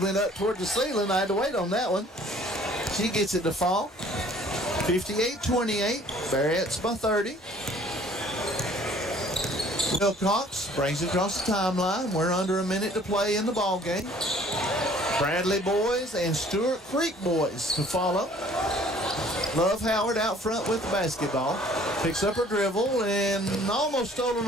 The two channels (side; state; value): both; normal; correlation 0.55